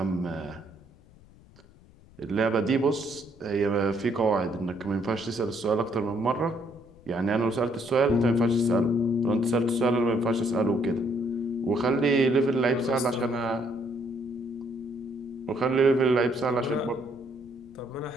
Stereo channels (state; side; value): noise; left; rumble, 25 dB below the sound